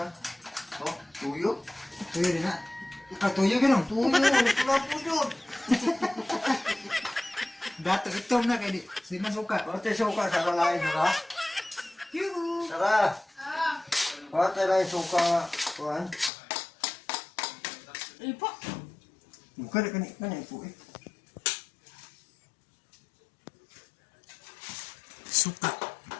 na. Oh, tuyo. Tuyo din na. Ah, tuyo ganun. Tuyo, pula-pula yun. Dato itom na kay di. Sima suka. Pati suka sa kalain, saka. Saka. Pati na yung suka. Kuhan. Ipa. Bukan na kanina po eh. Suka.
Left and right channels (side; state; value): right; drops out; at 16.3 s